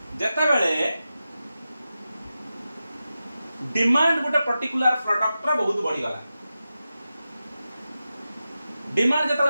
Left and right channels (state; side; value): inverted; both; correlation -0.92